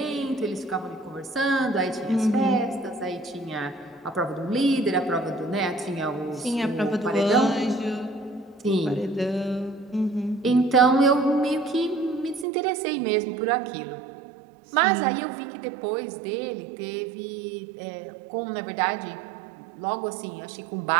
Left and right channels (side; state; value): left; drops out; at 12.5 s